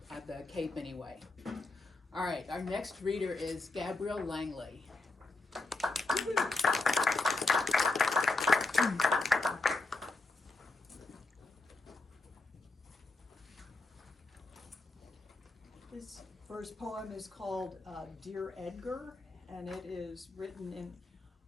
cape anyway. All right, our next reader is Gabrielle Langley. This first poem is called Dear Edgar, and it is written in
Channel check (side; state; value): right; quieter; 3.4 dB